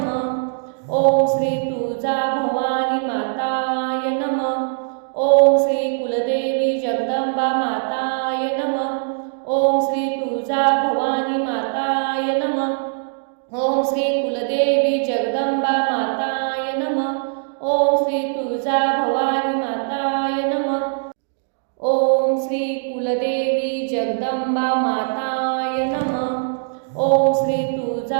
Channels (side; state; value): left; silent; digital silence